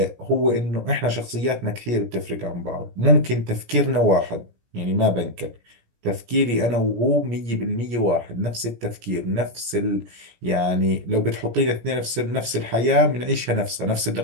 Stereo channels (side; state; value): left; late; 17 ms